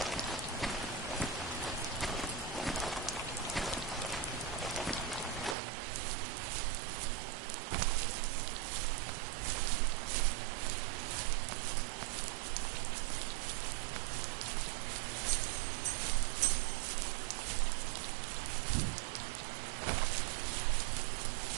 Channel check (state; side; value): drops out; left; at 5.6 s